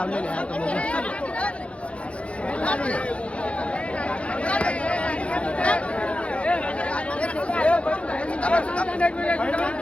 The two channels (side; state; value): right; late; 0.061 ms